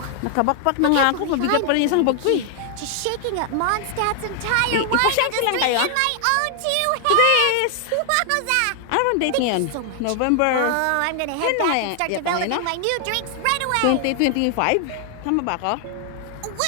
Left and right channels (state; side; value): different; both; correlation 0.00